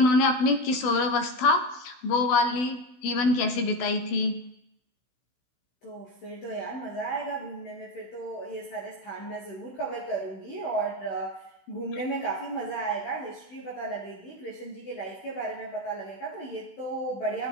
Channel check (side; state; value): right; late; 16 ms